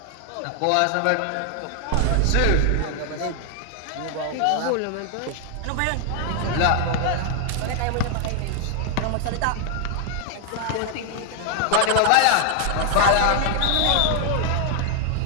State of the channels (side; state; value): both; different; correlation 0.00